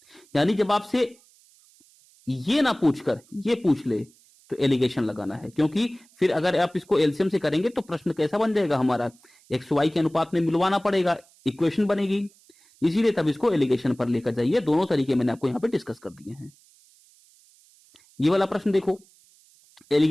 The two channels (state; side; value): noise; right; hiss, 29 dB below the sound